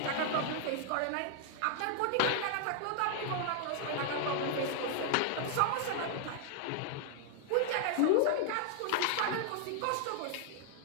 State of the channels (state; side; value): different; both; correlation 0.00